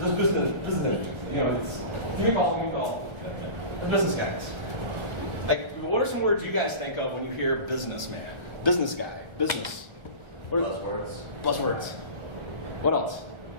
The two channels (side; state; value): left; late; 1.4 ms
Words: know, give me a call. Give me a call." The business guys. Like, what are some words you guys think of when you hear businessman, business guy, business? What are those words? Buzzwords. What else?